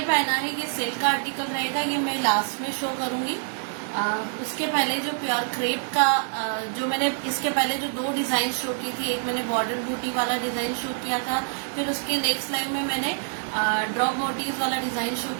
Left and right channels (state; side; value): silent; left; digital silence